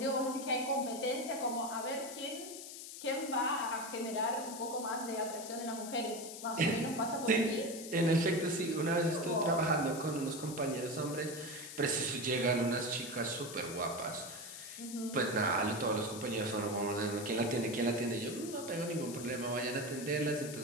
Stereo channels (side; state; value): left; noise; hiss, 11 dB below the sound